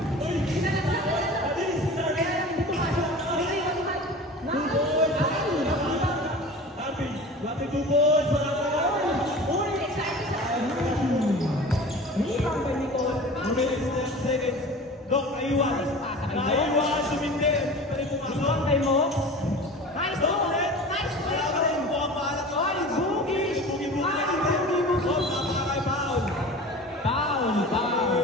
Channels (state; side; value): normal; both; correlation 0.37